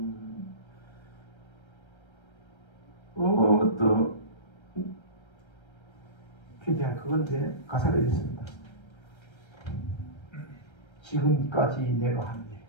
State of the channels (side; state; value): right; late; 1.3 ms